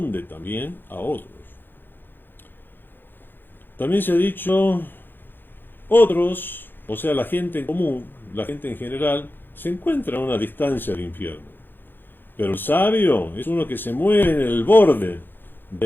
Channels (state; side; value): late; right; 0.097 ms